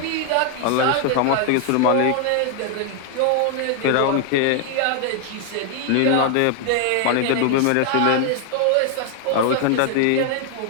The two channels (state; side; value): different; both; correlation 0.00